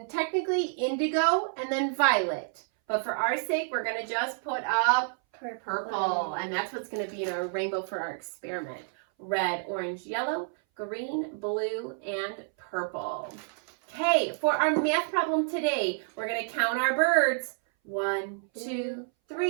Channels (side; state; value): left; silent; 58 dB below the other